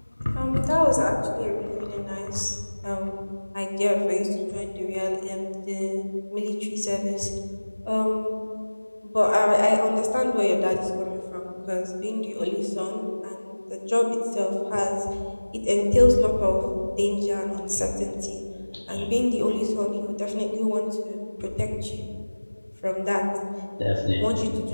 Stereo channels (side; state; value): both; inverted; correlation -1.00